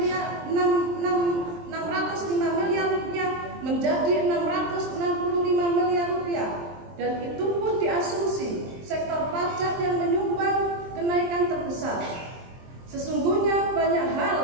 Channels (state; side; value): late; left; 23 ms